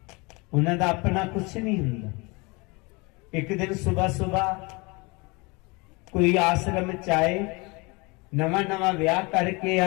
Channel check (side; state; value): right; quieter; 27.3 dB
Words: उन्हां दा अपना कुछ नहीं हुंदा। एक दिन सुबह सुबह कोई आश्रम च आए, नवा नवा ब्याह करके